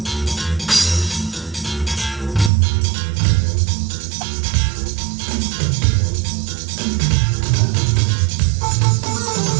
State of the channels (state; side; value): drops out; left; at 2.5 s